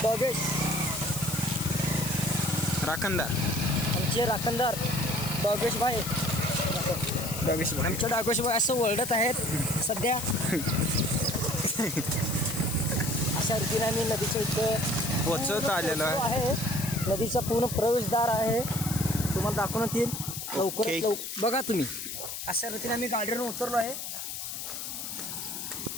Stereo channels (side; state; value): left; noise; hiss, 6 dB below the sound